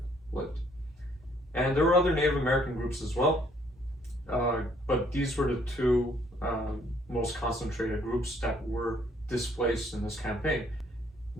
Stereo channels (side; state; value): both; normal; correlation 0.64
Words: lived. And there were other Native American groups as well, but these were the two most concentrated groups that were displaced in this campaign.